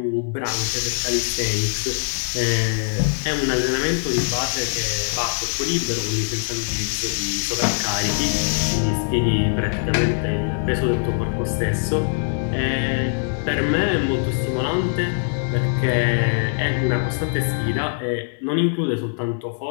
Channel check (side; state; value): right; silent; 57 dB below the other